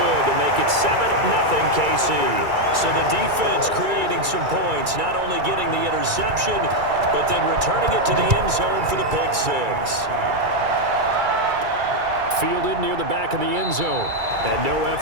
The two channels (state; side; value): late; left; 2.3 ms